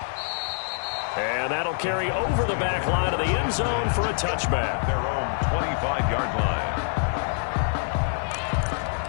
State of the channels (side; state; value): right; silent; 61 dB below the other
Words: And that'll carry over the back line of the end zone for a touchback. Their own 25-yard line.